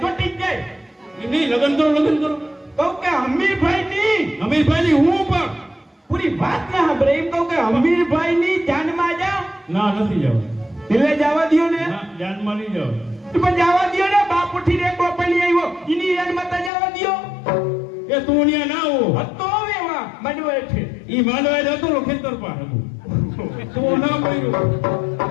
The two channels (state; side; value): drops out; right; at 16.7 s